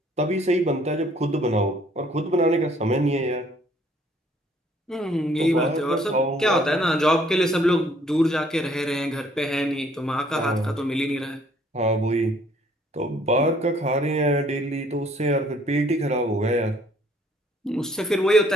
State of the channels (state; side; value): normal; both; correlation 0.61